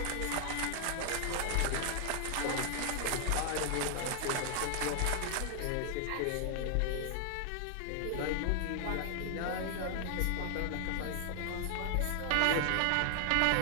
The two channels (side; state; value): both; different; correlation 0.00